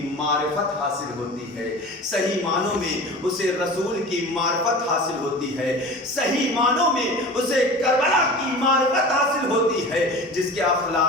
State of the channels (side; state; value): both; normal; correlation 0.36